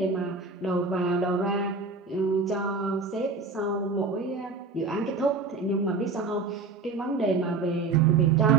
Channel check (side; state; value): left; quieter; 4.0 dB